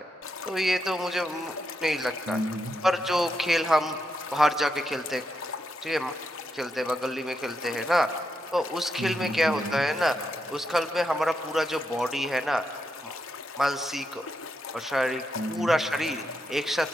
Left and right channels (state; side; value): normal; both; correlation 0.82